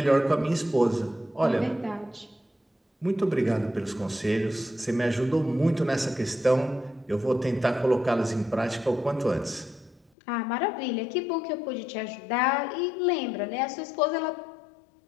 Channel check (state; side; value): drops out; right; at 10.1 s